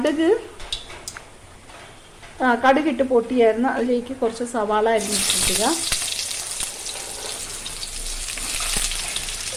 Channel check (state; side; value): identical; both; correlation 1.00